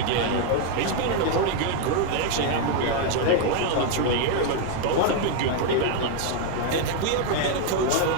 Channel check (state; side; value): different; both; correlation 0.00